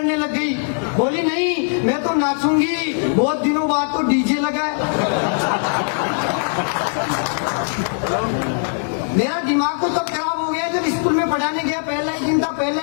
लग गई, बोली नहीं मैं तो नाचूंगी, बहुत दिनों बाद तो डीजे लगा है। मेरा दिमाग तो तब खराब हो गया जब स्कूल में पढ़ाने गया, पहला ही दिन था, पहला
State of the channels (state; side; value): silent; right; 66 dB below the other